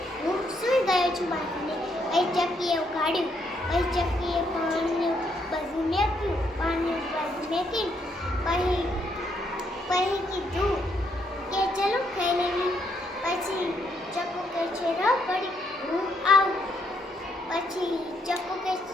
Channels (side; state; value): both; normal; correlation 0.74